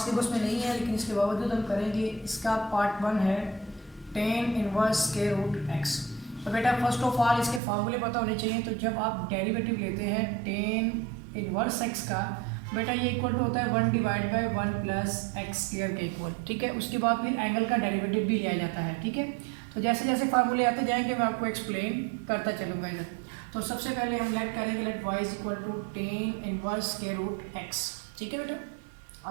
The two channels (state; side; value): drops out; left; at 7.6 s